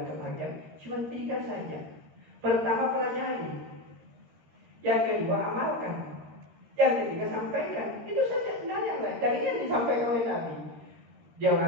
kebahagiaan, cuma 3 saja. Pertama, pelajari. Yang kedua, amalkan. Yang ketiga, sampaikan. Itu saja sebenarnya. Dan ini yang disampaikan oleh Nabi. Dia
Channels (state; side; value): late; left; 13 ms